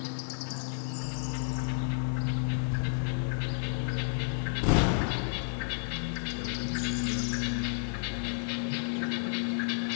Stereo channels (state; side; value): silent; right; digital silence